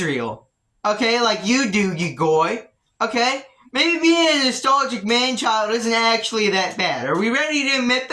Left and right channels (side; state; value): both; identical; correlation 1.00